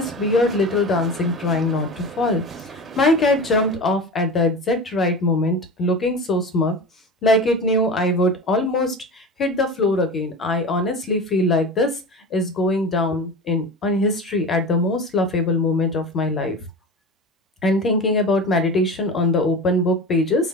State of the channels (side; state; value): both; normal; correlation 0.30